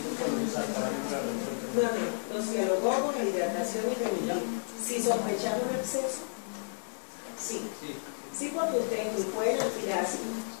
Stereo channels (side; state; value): right; silent; 57 dB below the other